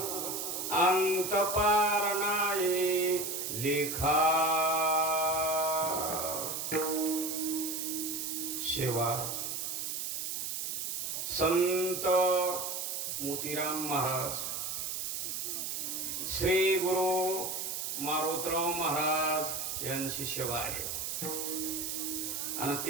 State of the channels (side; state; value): right; noise; hiss, 3 dB below the sound